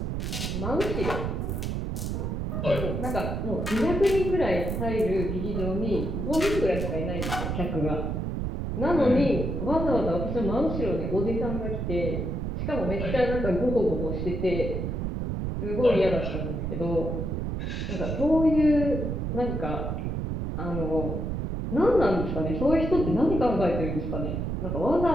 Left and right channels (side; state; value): right; noise; rumble, 2 dB below the sound